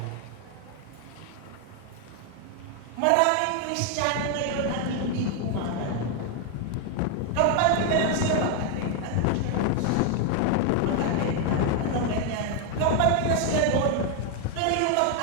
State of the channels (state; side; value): different; both; correlation 0.01